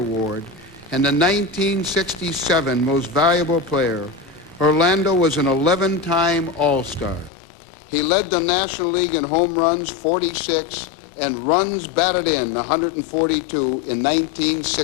and the 1967 Most Valuable Player, Orlando was an 11-time All-Star. He led the National League in home runs, 46, and runs batted in, 142, in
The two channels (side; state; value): right; drops out; at 7.3 s